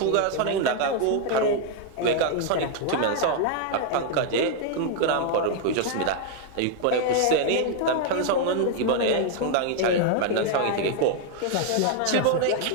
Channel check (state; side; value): different; both; correlation 0.00